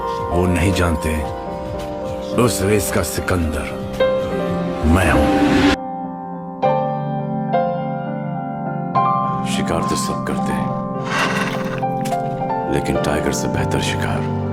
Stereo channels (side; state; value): both; identical; correlation 1.00